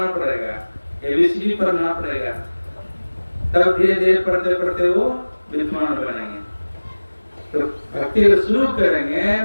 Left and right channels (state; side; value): inverted; both; correlation -1.00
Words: पड़ेगा, ABCD पढ़ना पड़ेगा, तब धीरे धीरे पढ़ते पढ़ते वो विद्वान बनेंगे। तो भक्ति को शुरू करेंगे